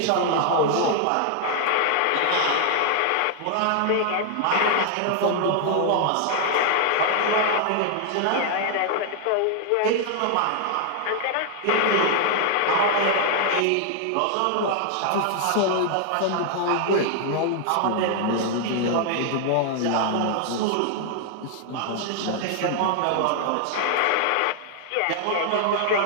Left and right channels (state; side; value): different; both; correlation 0.00